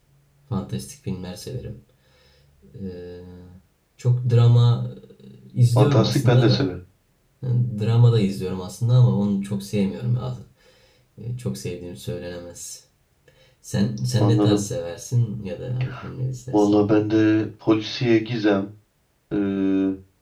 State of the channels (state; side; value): identical; both; correlation 1.00